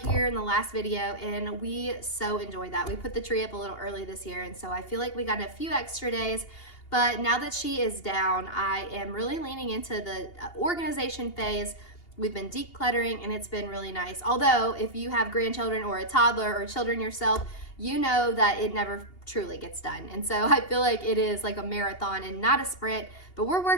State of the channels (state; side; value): late; right; 2.8 ms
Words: here in the last video, and we so enjoyed that. We put the tree up a little early this year, and so I feel like we got a few extra days. But now that she is down, I am really leaning into the organization phase. We've been decluttering, and it's been really nice. Although, if you have grandchildren or a toddler or children yourself, you know that it never truly gets done. And so I feel like it is like a marathon and not a sprint, but we're